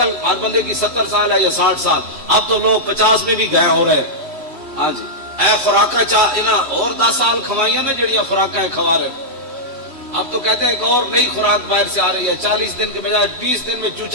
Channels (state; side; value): late; left; 3.1 ms